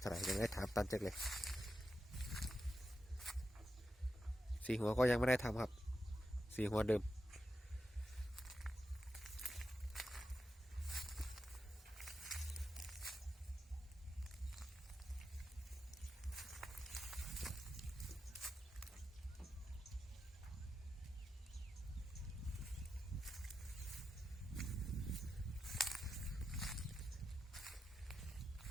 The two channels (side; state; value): both; normal; correlation 0.88